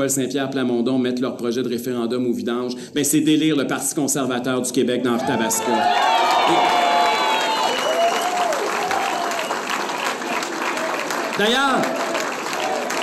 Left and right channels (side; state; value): both; identical; correlation 1.00